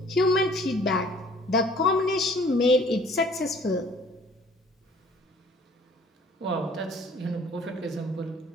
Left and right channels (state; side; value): normal; both; correlation 0.54